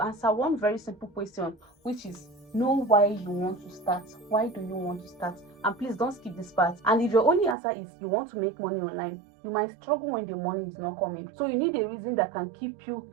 answer one very simple question, which is know why you want to start. Why do you want to start? And please don't skip this part. And if your only answer is you want to make money online, you might struggle when the money is not coming. So you need a reason that can keep you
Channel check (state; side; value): drops out; left; at 7.6 s